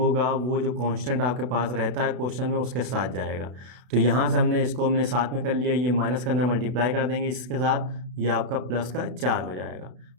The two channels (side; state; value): left; late; 32 ms